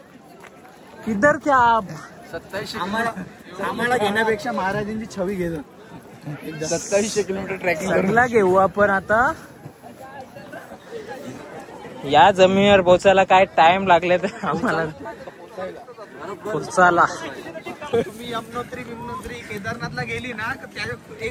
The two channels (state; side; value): identical; both; correlation 1.00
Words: किधर थे आप? 27 आम्हाला घेण्यापेक्षा महाराजांची छवी घेतो. 2700 किलोमीटर ट्रॅकिंग सगळा घेऊ आपण आता. या जमिनीवर पोचायला काय टाइम लागले तर आम्हाला पोचायला. मी यमुनोत्री केदारनाथला गेली ना